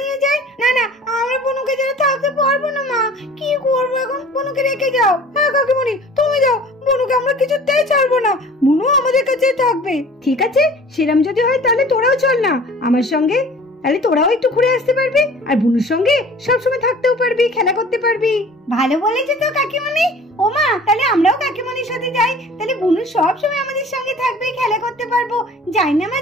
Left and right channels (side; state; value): both; normal; correlation 0.46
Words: নিয়ে যায়। না না, আমরা বুনুকে ছাড়া থাকতে পারবো না মা। কি করবো এখন? বুনুকে রেখে যাও। হ্যাঁ কাকিমণি, তুমি যাও, বুনুকে আমরা কিছুতেই ছাড়বো না, বুনু আমাদের কাছেই থাকবে। ঠিক আছে, সেরম যদি হয় তাহলে তোরাও চল না আমার সঙ্গে, তাহলে তোরাও একটু ঘুরে আসতে পারবি আর বুনুর সঙ্গে সবসময় থাকতেও পারবি, খেলা করতে পারবি। ভালো বলেছে তো কাকিমণি। ও মা, তাহলে আমরাও কাকিমণির সাথে যাই, তাহলে বুনু সব সময় আমাদের সঙ্গে থাকবে, খেলা করতে পারবো। যাই না মা,